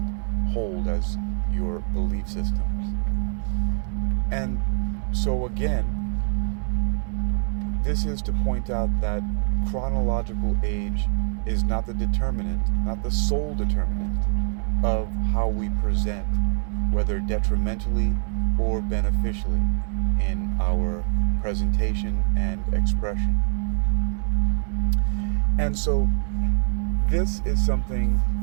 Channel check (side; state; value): left; silent; digital silence